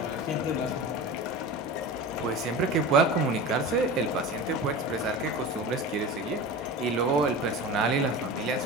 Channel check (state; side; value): normal; both; correlation 0.31